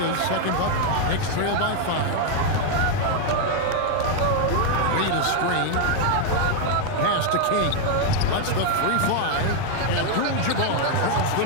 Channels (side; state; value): both; different; correlation 0.00